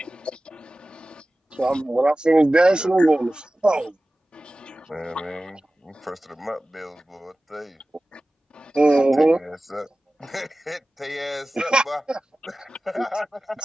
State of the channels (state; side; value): normal; both; correlation 0.96